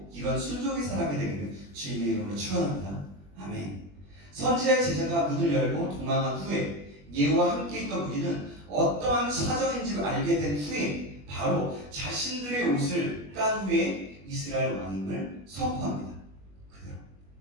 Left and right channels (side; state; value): left; late; 20 ms